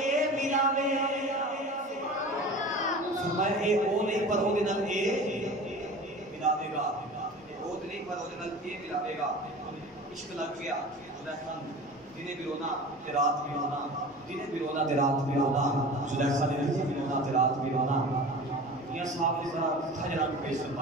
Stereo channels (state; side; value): normal; both; correlation 0.37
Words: ملاوے فرمایا اے او نہیں پر او دے نال اے ملاوے گا او نہیں پر او دے نال اے ملاوے گا عشق لگ گیا زلیخا دنے بھی رونا تے رات بھی رونا دنے بھی رونا تے رات بھی رونا زلیخا نے بھی رونا تے رات بھی رونا میاں صاحب نے ذرا تھجرا کو پیش